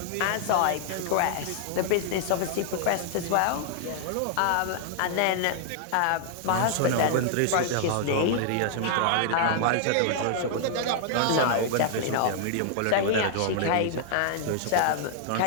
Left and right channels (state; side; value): different; both; correlation -0.01